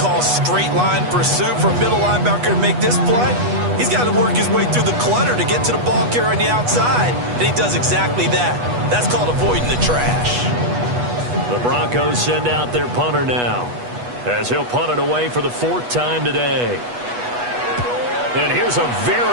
straight line pursuit for a middle linebacker to make this play. He's got to work his way through the clutter to get to the ball carrier on the outside, and he does exactly that. That's called avoiding the trash. The Broncos send out their punter now, as he'll punt it away for the 4th time today. And here's a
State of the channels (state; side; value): late; left; 8.2 ms